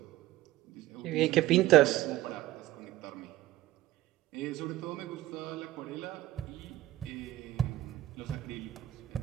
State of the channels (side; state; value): left; quieter; 15.4 dB